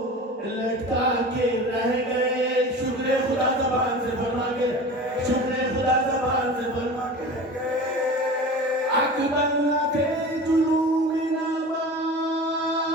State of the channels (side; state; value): both; normal; correlation 0.35